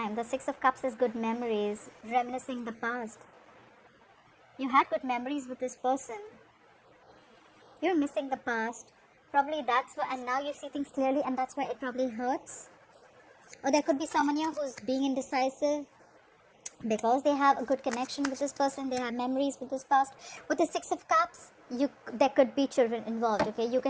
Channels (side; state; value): both; identical; correlation 1.00